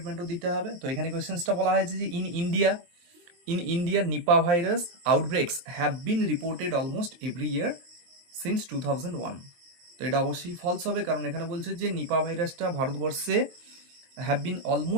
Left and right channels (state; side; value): late; left; 23 ms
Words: দিতে হবে। তো এখানে কোয়েশ্চেন্সটা বলা হয়েছে যে in India Nipah virus outbreaks have been reported almost every year since 2001। তো এটা অবশ্যই ফলস হবে, কারণ এখানে বলছে যে নিপা ভাইরাসটা ভারতবর্ষে have been